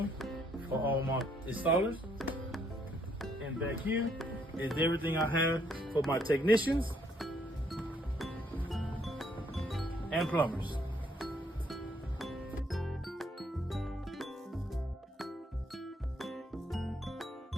for all my installers. And back here is everything I have for my technicians and plumbers.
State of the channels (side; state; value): both; normal; correlation 0.69